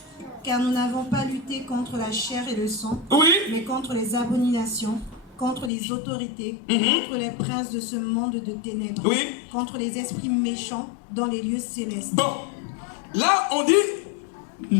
Car nous n'avons pas lutté contre la chair et le sang, Oui. mais contre les abominations, contre les autorités, contre les princes de ce monde de ténèbres, Oui. contre les esprits méchants dans les lieux célestes. Bon. Là, on dit,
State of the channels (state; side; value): drops out; right; at 5.7 s